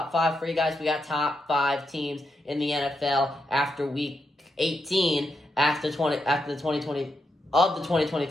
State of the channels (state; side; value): normal; both; correlation 0.83